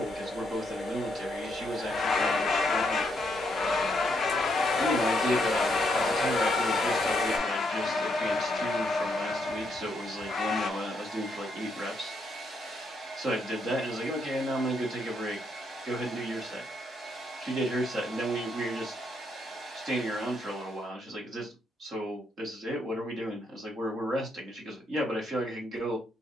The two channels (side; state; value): both; normal; correlation 0.76